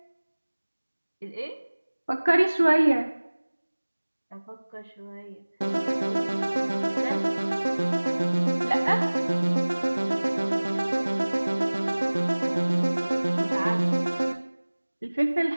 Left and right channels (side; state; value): both; inverted; correlation -1.00